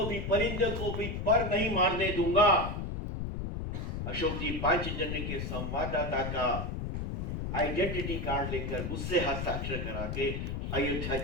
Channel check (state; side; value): noise; left; rumble, 3 dB below the sound